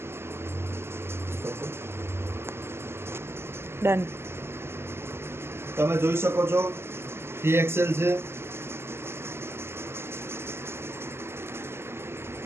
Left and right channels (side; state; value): left; late; 0.12 ms